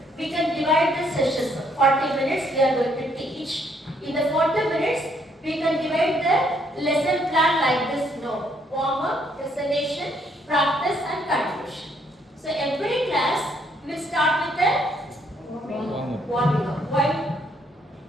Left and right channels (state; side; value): normal; both; correlation 0.69